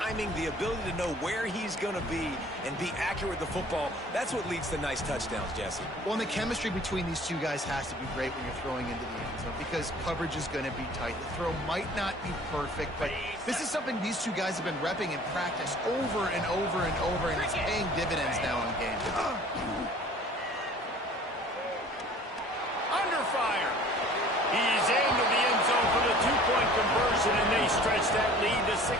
the ability to know where he's going to be and be accurate with the football, that's what leads to nice touchdowns, Jesse. Well, and the chemistry between these two guys has to be great when you're throwing into the end zone because coverage is going to be tight. The throw might not be perfect, but this is something these two guys have been repping in practice over and over and over, and it's paying dividends now in games. Under fire. He's into the end zone for the 2-point conversion, and they stretch that lead to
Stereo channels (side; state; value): both; normal; correlation 0.49